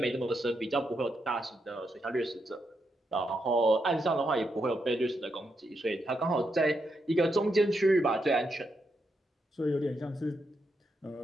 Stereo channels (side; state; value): both; normal; correlation 0.82